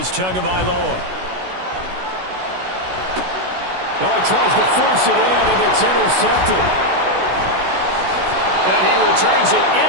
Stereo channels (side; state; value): left; late; 16 ms